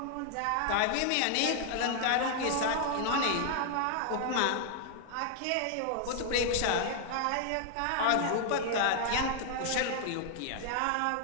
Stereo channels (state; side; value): different; both; correlation 0.00